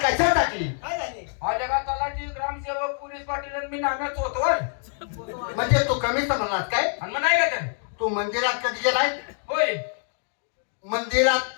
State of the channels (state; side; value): silent; right; 57 dB below the other